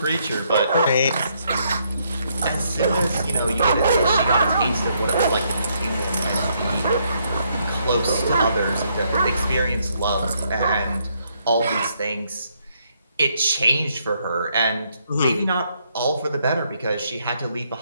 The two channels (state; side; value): inverted; both; correlation -0.73